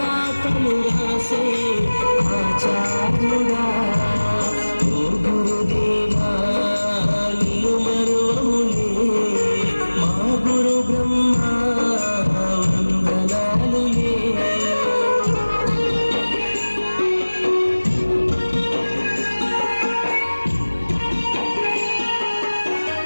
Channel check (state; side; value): inverted; both; correlation -1.00